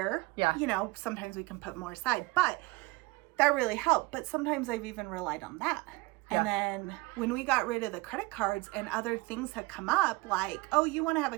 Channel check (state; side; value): quieter; left; 22.5 dB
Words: sometimes we can put more aside, but that really helped. But sometimes I've even relied on that. And then when we got rid of the credit cards and other things had come up, like, oh, you want to have a